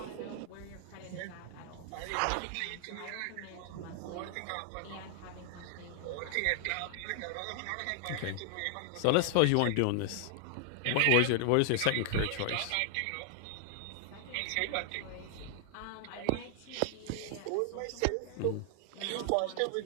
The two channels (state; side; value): different; both; correlation 0.00